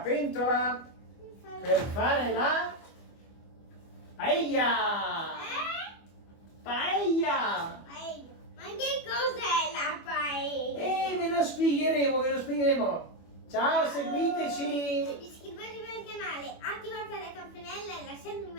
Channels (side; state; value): right; late; 25 ms